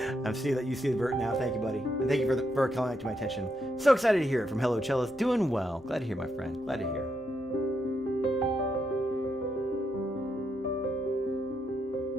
I see that you see the vert now. Thank you, buddy. And thank you for calling it to my attention. So excited to hear it from Hello Cellos. Doing well. Glad to hear, my friend. Glad to hear.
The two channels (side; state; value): both; normal; correlation 0.79